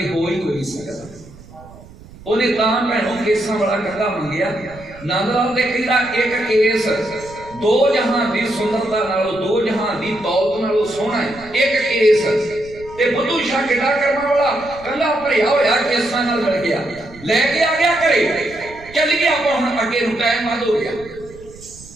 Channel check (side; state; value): right; noise; rumble, 20 dB below the sound